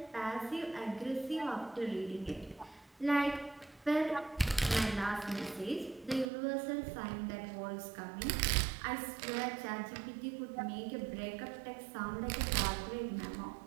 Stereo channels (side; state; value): left; drops out; at 6.2 s